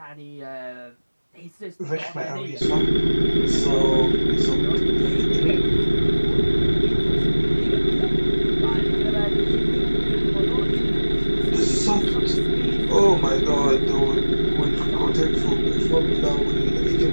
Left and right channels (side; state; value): both; inverted; correlation -1.00